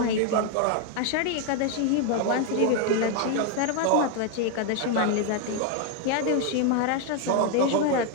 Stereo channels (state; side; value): different; both; correlation 0.01